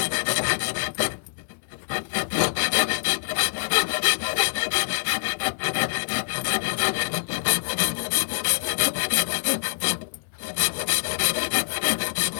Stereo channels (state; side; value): silent; right; digital silence